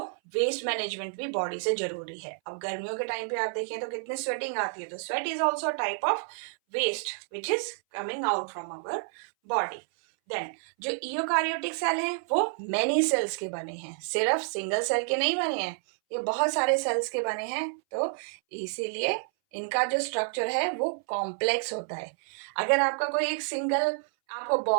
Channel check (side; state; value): left; silent; 58 dB below the other